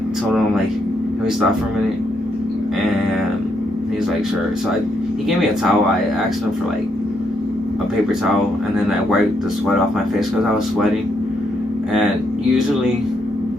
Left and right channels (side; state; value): both; normal; correlation 0.76